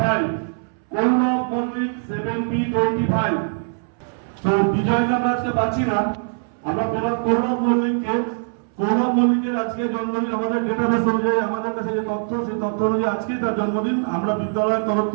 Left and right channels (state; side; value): silent; left; 63 dB below the other